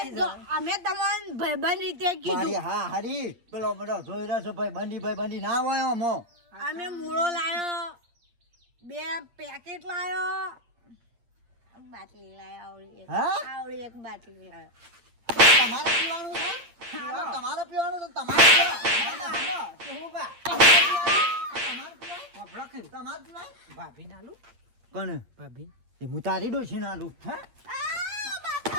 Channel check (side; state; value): left; late; 8.6 ms